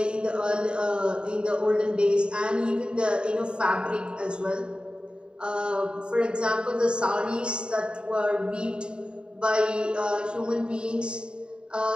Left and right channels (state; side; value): late; left; 0.051 ms